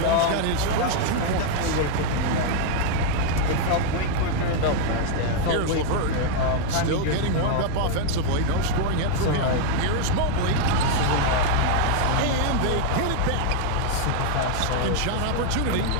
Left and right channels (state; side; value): different; both; correlation 0.00